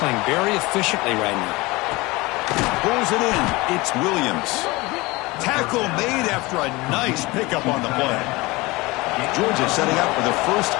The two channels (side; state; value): right; quieter; 22.6 dB